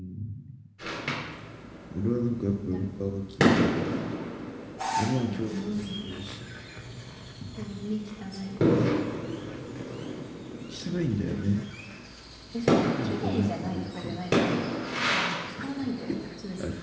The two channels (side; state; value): both; identical; correlation 1.00